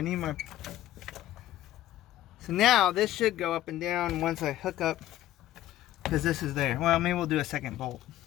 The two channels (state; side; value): quieter; right; 13.5 dB